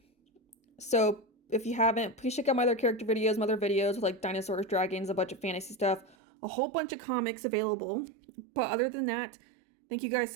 So if you haven't, please check out my other character videos, my other videos with like dinosaurs, dragons, a bunch of fantasy stuff, a whole bunch of comics available. But other than that, thank you guys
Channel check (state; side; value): drops out; left; at 6.2 s